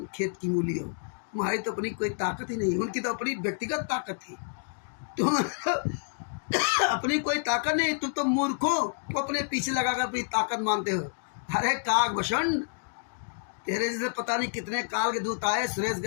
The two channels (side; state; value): right; silent; digital silence